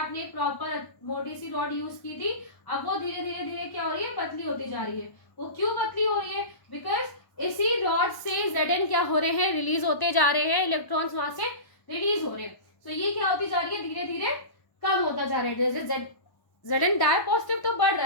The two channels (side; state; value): right; late; 1.1 ms